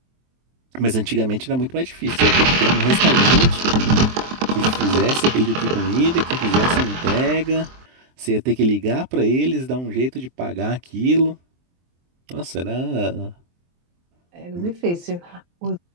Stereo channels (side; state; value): left; late; 23 ms